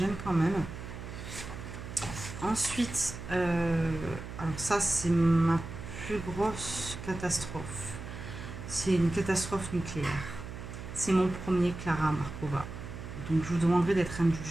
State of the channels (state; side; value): noise; right; hum, 10 dB below the sound